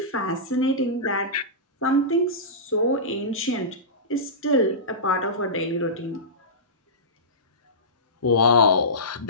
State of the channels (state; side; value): normal; both; correlation -0.19